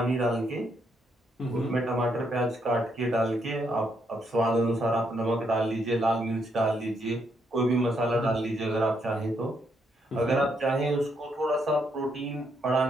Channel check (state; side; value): normal; both; correlation 0.76